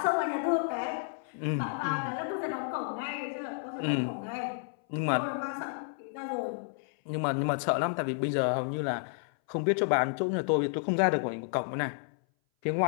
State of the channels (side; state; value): right; silent; 57 dB below the other